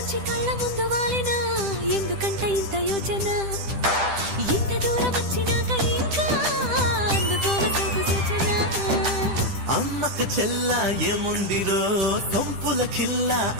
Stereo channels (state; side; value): late; left; 10 ms